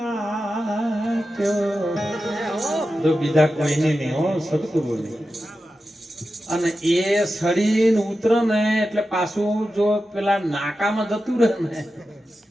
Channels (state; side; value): normal; both; correlation 0.92